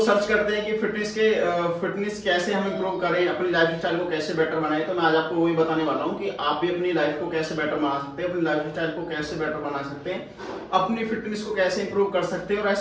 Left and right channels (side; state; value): both; identical; correlation 1.00